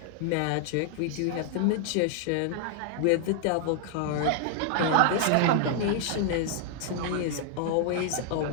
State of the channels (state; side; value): different; both; correlation 0.00